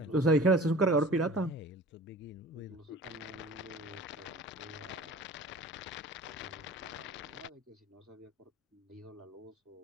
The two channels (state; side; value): normal; both; correlation 0.43